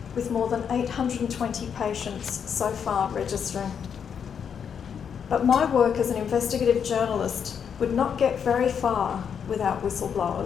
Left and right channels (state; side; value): quieter; right; 7.4 dB